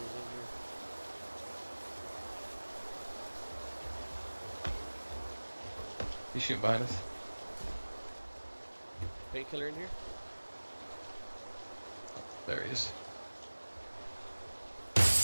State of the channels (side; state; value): both; inverted; correlation -1.00